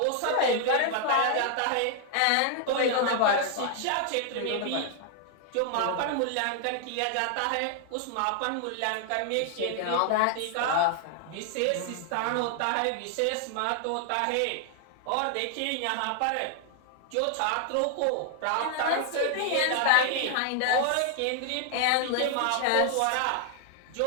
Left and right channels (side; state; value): both; different; correlation 0.00